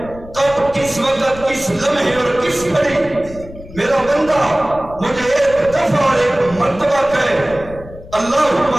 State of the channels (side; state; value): left; noise; rumble, 16 dB below the sound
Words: کب، کس وقت، کس لمحے اور کس گھڑی میرا بندہ مجھے ایک دفعہ اور ایک مرتبہ کہے اللہم